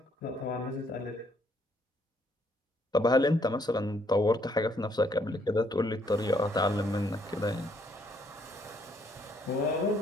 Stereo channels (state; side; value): normal; both; correlation 0.70